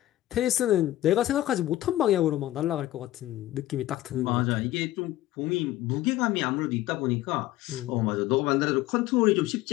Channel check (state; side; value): quieter; right; 15.1 dB